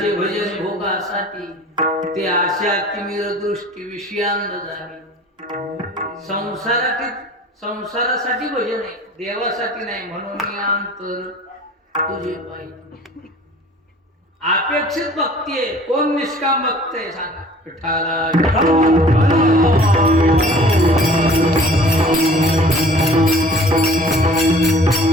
भजन भोगासाठी ते आशा तिमिर दृष्टी विषयांद झाली. संसारासाठी भजन आहे, देवासाठी नाही. म्हणून अंतर तुझे पाहिजे. अपेक्षित भक्ती आहे. कोण निष्काम भक्त आहे सांगा? विठ्ठला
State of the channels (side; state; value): both; normal; correlation 0.47